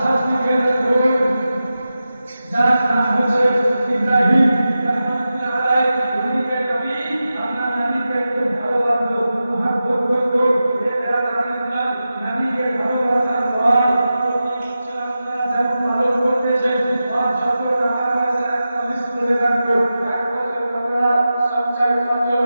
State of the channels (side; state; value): both; inverted; correlation -0.92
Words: আজকে দেখুন যার নাম হচ্ছে ইব্রাহিম রাহমাতুল্লাহ আলাইহি। উনিকে নবী আপনার নবীকে খুব ভালোবাসতো, মুহাব্বত করতো। এটা রাদিয়াল্লাহ নবীকে ভালোবাসার পর আপনারা যেমন পালন করতেছেন আর যত টাকা পয়সা একটা লিস্ট করে রাখতো, এক বছর টাকা সঞ্চয় করতে